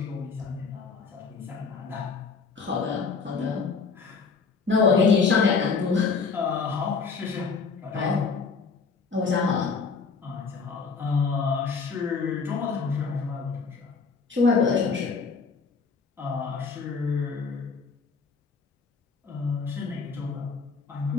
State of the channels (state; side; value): quieter; right; 4.9 dB